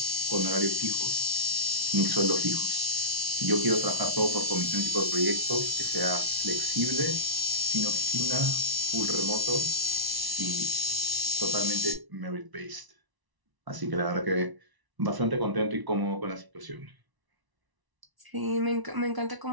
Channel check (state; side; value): late; left; 1.0 ms